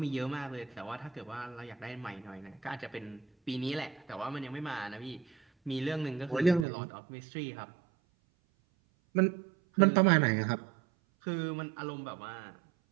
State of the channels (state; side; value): drops out; left; at 6.7 s